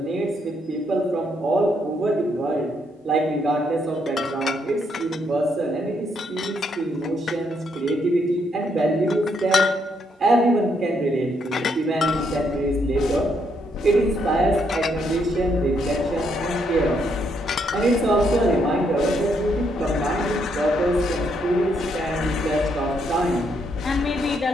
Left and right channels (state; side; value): normal; both; correlation 0.74